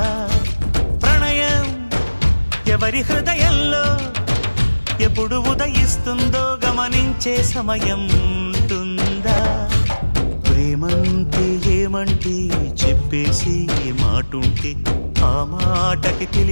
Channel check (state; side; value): inverted; both; correlation -1.00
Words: ప్రణయం ఎవరి హృదయంలో ఎప్పుడు ఉదయిస్తుందో గమనించే సమయం ఉంటుందా? ప్రేమంటే ఏమంటే చెప్పేసి మాటుంటే ఆ మాటకి